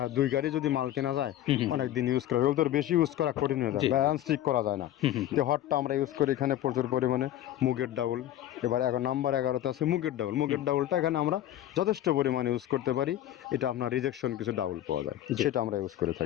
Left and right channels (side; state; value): right; quieter; 12.8 dB